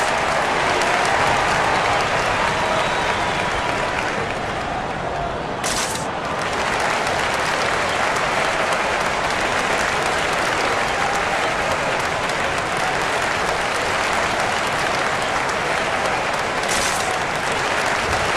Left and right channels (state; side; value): identical; both; correlation 1.00